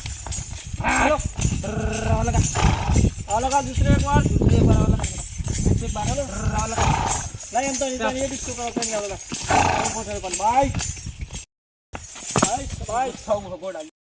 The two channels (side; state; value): both; identical; correlation 1.00